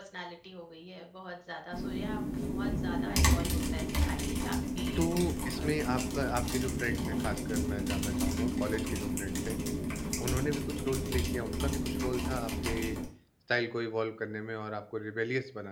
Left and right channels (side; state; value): both; identical; correlation 1.00